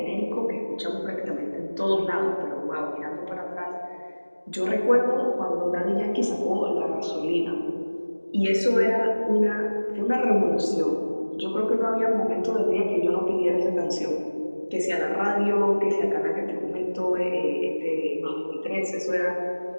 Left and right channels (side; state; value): both; inverted; correlation -1.00